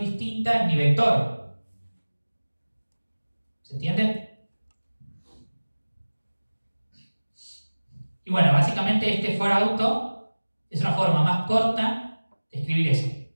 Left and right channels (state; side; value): inverted; both; correlation -1.00